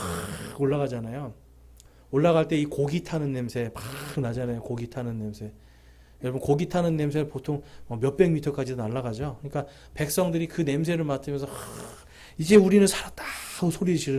올라가잖아요. 올라갈 때 이 고기 타는 냄새 막 나잖아요. 고기 타는 냄새. 여러분, 고기 타는 냄새를 보통 몇백 미터까지도 날아가죠. 그러니까 백성들이 그 냄새를 맡으면서 이제 우리는 살았다 하고 소리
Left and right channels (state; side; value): identical; both; correlation 1.00